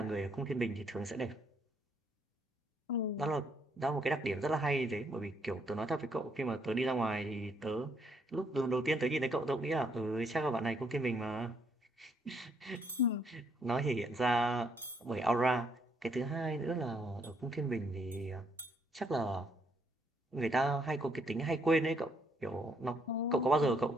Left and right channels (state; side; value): normal; both; correlation 0.71